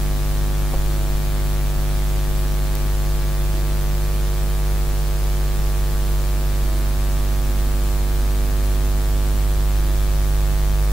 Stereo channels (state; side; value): noise; left; rumble, 13 dB below the sound